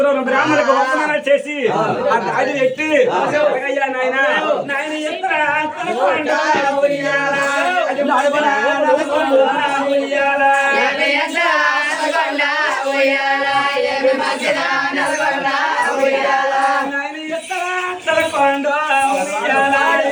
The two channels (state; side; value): identical; both; correlation 1.00